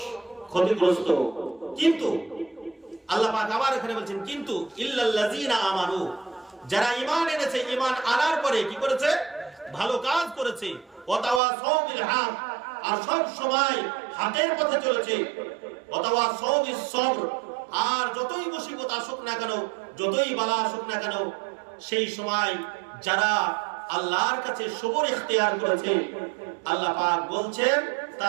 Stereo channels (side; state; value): left; drops out; at 11.4 s